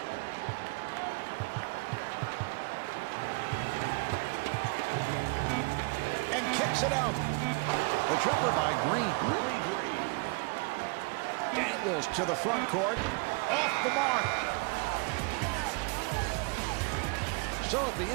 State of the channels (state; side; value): quieter; left; 31.5 dB